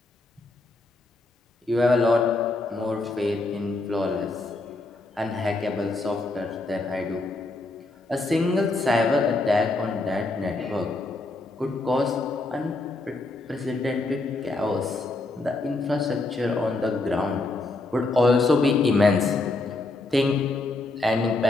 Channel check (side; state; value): right; quieter; 3.0 dB